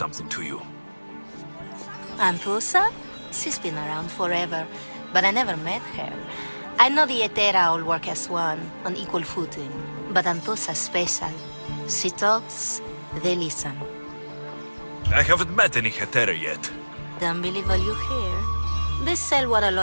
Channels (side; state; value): both; inverted; correlation -1.00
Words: to you. Anthusa? She's been around forever, but I never met her. I know the Etera all work as one, on equal footing. But Anthusa's special. She talks, they listen. I haven't met any Hetera yet. Don't believe all you hear. They sell what a